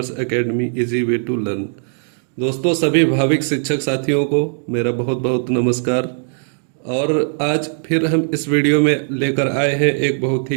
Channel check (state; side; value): silent; left; digital silence